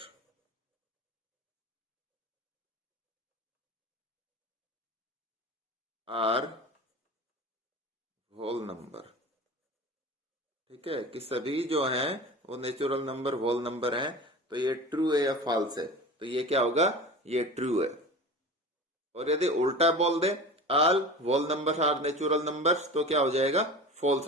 are whole number. ठीक है, कि सभी जो हैं वो नेचुरल नंबर होल नंबर हैं। तो ये ट्रू है या फॉल्स है, तो ये क्या होगा, ये ट्रू है। और यदि उल्टा बोल दे all whole numbers are natural numbers, तो क्या हो जाएगा, फॉल्स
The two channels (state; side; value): normal; both; correlation 0.34